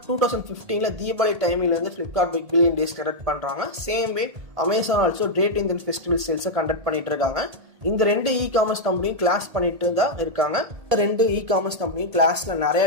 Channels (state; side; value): late; left; 1.8 ms